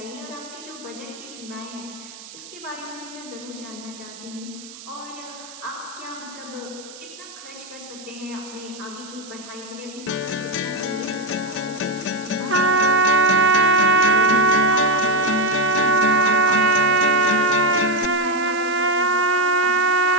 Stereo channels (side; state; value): right; noise; hiss, 17 dB below the sound